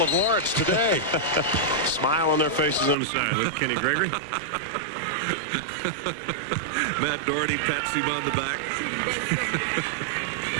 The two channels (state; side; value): drops out; left; at 3.0 s